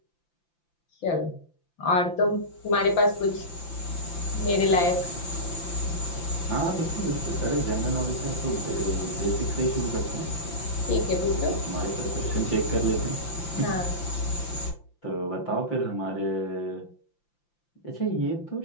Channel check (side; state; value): right; late; 5.8 ms